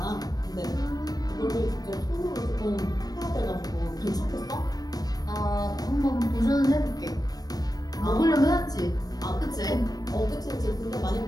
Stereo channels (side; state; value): right; late; 0.19 ms